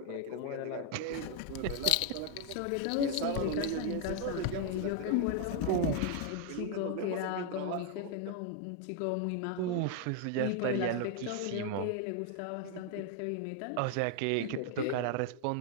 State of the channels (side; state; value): both; different; correlation 0.01